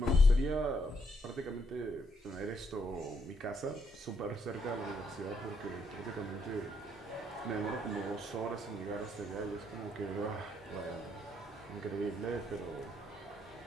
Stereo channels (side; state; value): both; normal; correlation 0.74